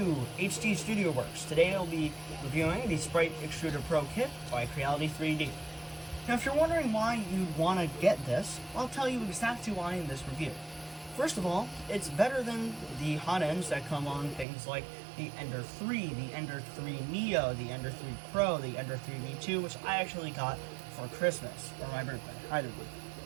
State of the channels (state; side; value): drops out; left; at 14.5 s